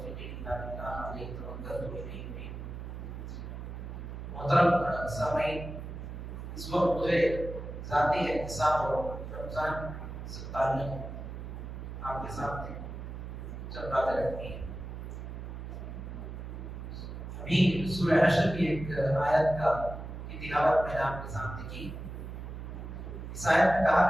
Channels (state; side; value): noise; right; hum, 8 dB below the sound